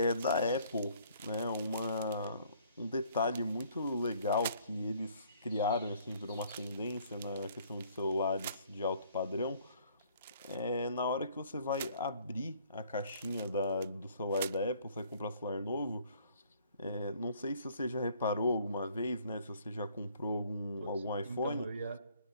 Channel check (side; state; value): both; inverted; correlation -0.60